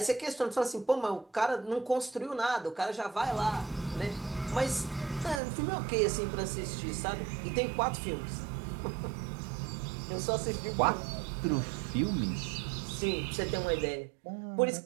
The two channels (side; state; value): left; drops out; at 5.4 s